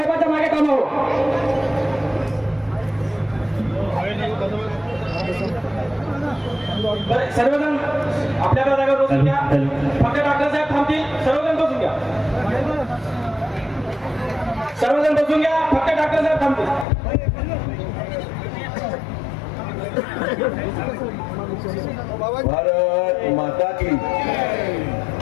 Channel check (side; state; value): right; drops out; at 16.9 s